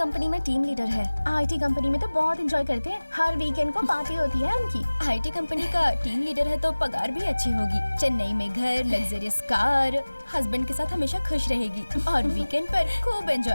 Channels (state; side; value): inverted; both; correlation -1.00